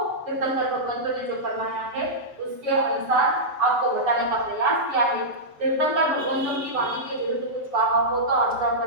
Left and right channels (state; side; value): late; left; 7.9 ms